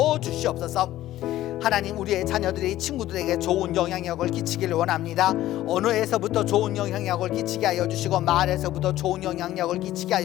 주시옵소서. 하나님, 우리의 자녀들이 친구들에게 좋은 영향력을 끼치기를 원합니다. 언어에서부터 좋은 영향력을 끼치게 하여 주시고, 말에서부터 좋은 영향력을 끼치게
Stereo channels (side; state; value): right; quieter; 14.4 dB